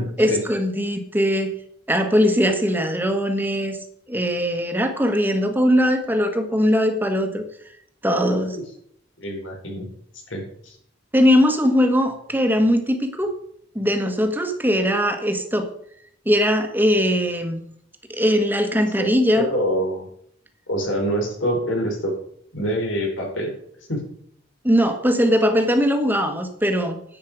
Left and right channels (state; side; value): normal; both; correlation 0.70